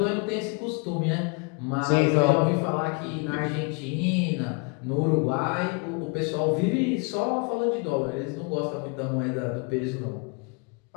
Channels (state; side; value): quieter; right; 32.6 dB